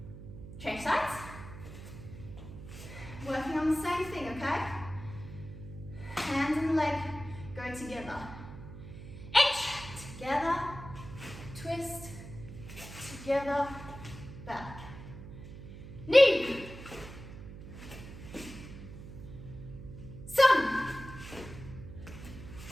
Change sides. Working on the same thing, okay? Hand and leg go together. H, together, twist, together, back. Knee, sun,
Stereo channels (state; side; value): noise; right; hum, 13 dB below the sound